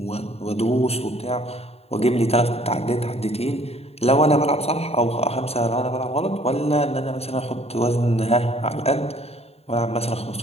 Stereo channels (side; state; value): right; late; 0.30 ms